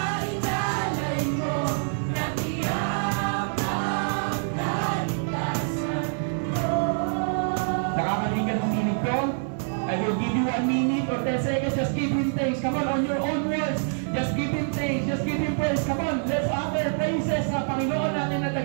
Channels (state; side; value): silent; left; 55 dB below the other